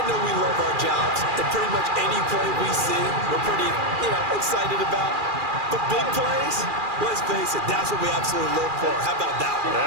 know we love our jobs, and pretty much any play we see, we're pretty, excited about. But big plays, let's face it, that's what we absolutely look for. How about that one?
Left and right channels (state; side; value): late; left; 2.4 ms